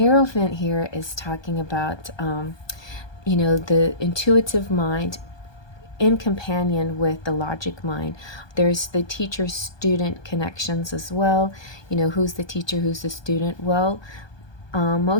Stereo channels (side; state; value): right; late; 1.2 ms